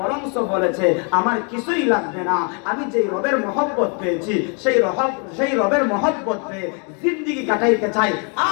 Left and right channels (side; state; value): right; quieter; 37.5 dB